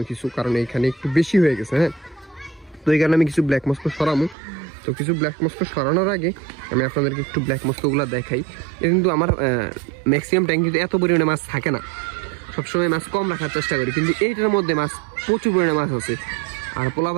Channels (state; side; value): drops out; left; at 4.4 s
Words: কিছু, কারণ এইখানে একটু বেশি হয়ে গেছে। হ্যাঁ, তো এই কারণে আমি কিছু ব্ল্যাক মস্কো সরামু। তো কিছু ব্ল্যাক মস্কো সরানোর আগে আমি আপনাদেরকে একটু ব্ল্যাক মস্কোগুলো দেখাই। কিন্তু আমার ম্যাক্সিমাম ট্যাঙ্কিতে এত পরিমাণে মাছ থাকে না, সবসময় মাছ কম রাখার চেষ্টা করি, কিন্তু এইটার মধ্যে মাছ প্রচুর পরিমাণে মাছ আছে। আর